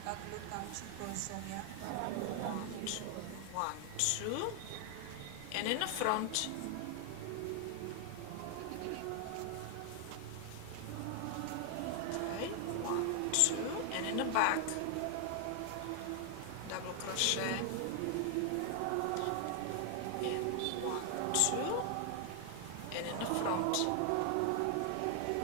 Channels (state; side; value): different; both; correlation 0.00